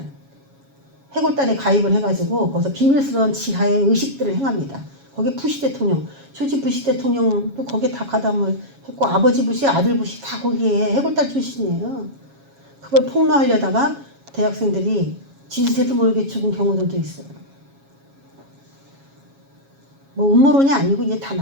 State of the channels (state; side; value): late; left; 7.3 ms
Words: 해골단에 가입을 해가지고 거기서 비밀스러운 지하의 의식들을 행합니다. 거기에 부시 대통령, 조지 부시 대통령도 거기에 다 가담을 했고 아버지 부시, 아들 부시 다 거기에 해골단 출신이에요. 그걸 폭로하려다가 대학생들이 지지세도 모르게 죽은 경우들도 있어요. 뭐 음모론이 아니고 이제 다